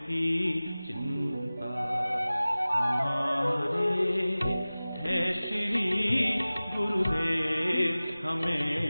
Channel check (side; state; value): both; inverted; correlation -0.98